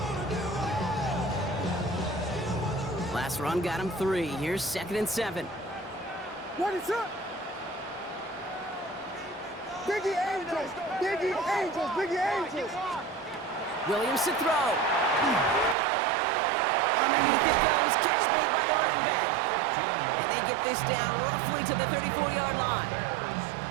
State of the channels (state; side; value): drops out; left; at 15.8 s